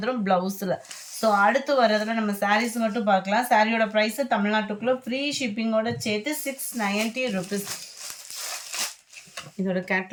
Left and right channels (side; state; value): both; identical; correlation 1.00